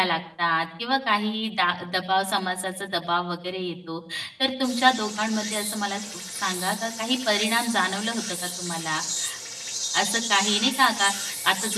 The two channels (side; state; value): both; identical; correlation 1.00